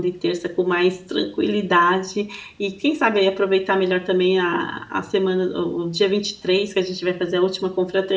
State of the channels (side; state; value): both; identical; correlation 1.00